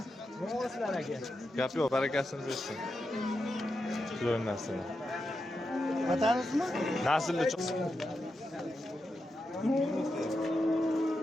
Novoslar aka. Gap yo'q, barakasini bersin. Shular narsalar. Vatanimizmi? Naslli chiqsin.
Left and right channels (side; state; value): both; normal; correlation 0.88